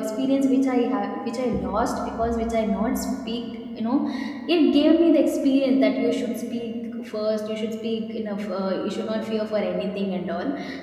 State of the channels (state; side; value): identical; both; correlation 1.00